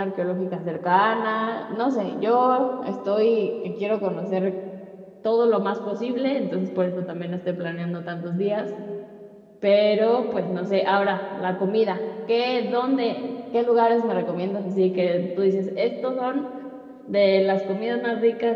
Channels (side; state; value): both; identical; correlation 1.00